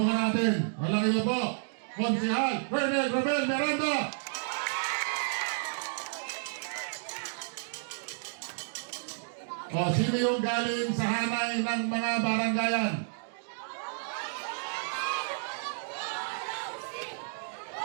natin. Walang iba po. Konsehal Colonel Romel Miranda. Sino yung galing sa hanay ng mga baranggayan?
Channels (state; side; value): silent; left; digital silence